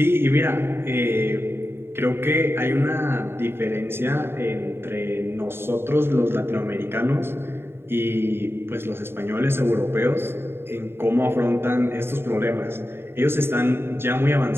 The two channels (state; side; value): late; left; 0.11 ms